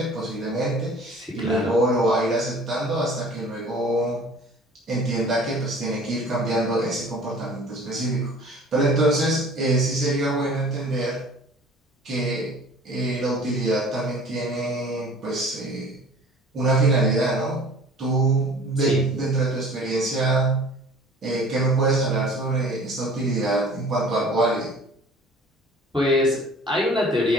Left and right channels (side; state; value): both; normal; correlation 0.47